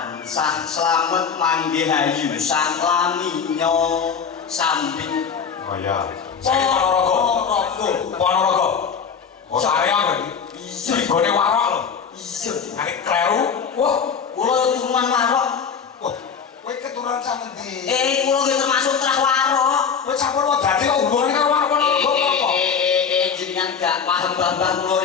slamet manggih hayu saklaminyo sambit. Oh ya. Saya Ponorogo. Ponorogo. Oh saya berarti. Iya. Gone warok lho. Iya. Nek kleru, wah, Kula turunan warok. wah, kowe keturunan sak endi? Kula nggih termasuk trah warok. Kowe campur wae dadi kok hubungane karo warok Ponorogo apa? Jenengan gak paham Mbah kula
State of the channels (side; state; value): right; quieter; 6.5 dB